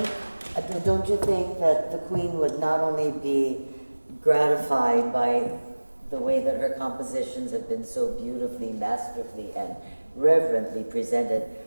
don't you think that the Queen would not only be gratified by the way that her compositions have been so beautifully, masterfully, and reverently presented,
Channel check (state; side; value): inverted; both; correlation -1.00